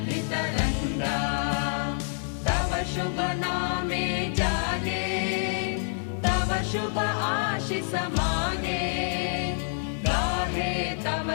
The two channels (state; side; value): silent; right; digital silence